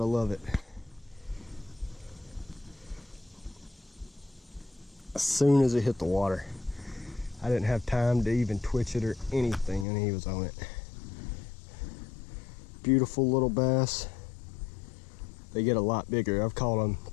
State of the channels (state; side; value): drops out; right; at 9.9 s